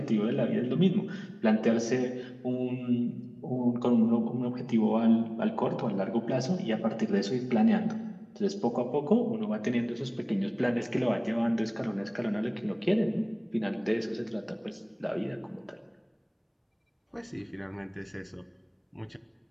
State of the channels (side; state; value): both; identical; correlation 1.00